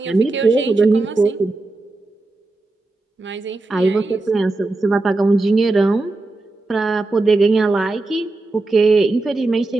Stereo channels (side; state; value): left; quieter; 3.2 dB